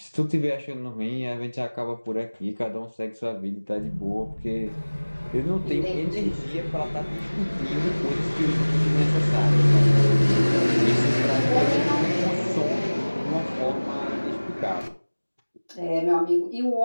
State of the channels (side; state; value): both; inverted; correlation -1.00